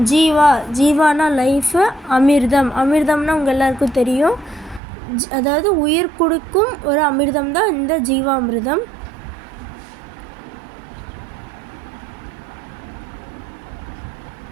ஜீவானா லைஃபு, அமிர்தம்னா உங்கள் எல்லாருக்கும் தெரியும். அதாவது உயிர் கொடுக்கும் ஒரு அமிர்தம் தான் இந்த ஜீவாமிர்தம்.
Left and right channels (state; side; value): drops out; left; at 4.8 s